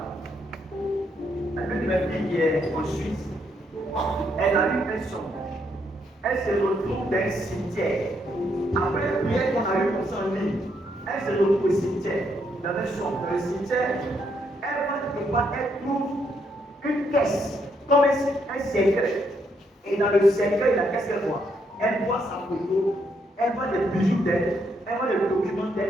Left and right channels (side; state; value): both; normal; correlation 0.75